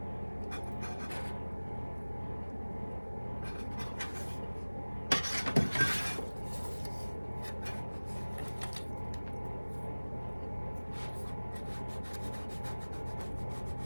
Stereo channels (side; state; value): both; inverted; correlation -1.00